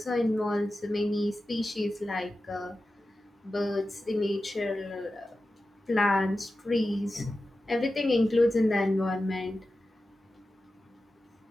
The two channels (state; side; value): normal; both; correlation 0.93